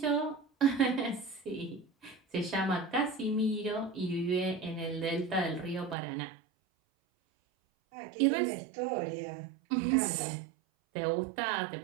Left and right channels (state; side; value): drops out; left; at 6.0 s